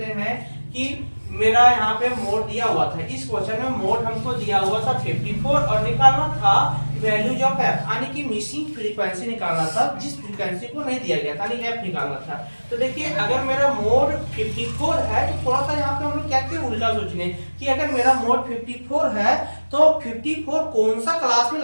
हैं कि मेरा यहाँ पे मोड दिया हुआ था, इस क्वेश्चन में मोड हमको दिया हुआ था 54 और निकालना था वैल्यूज ऑफ एफ, यानी कि मिसिंग फ्रीक्वेंसी निकालना था जिस फ्रीक्वेंसी को नहीं दिया गया था, यानी एफ निकालना था। तो देखिए अगर मेरा मोड 54 है तो थोड़ा सा यहाँ पे हम लोग क्या किए उल्टा सोचने कि अगर मेरा मोड 54 है तो 54 कौन सा क्लास में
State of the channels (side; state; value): both; inverted; correlation -1.00